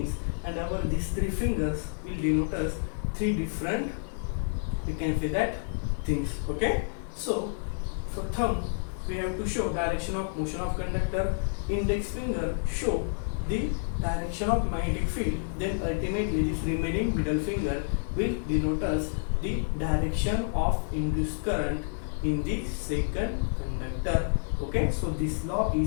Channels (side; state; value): right; silent; 58 dB below the other